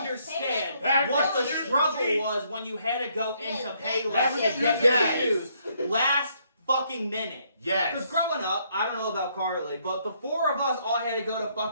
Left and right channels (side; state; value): both; inverted; correlation -0.70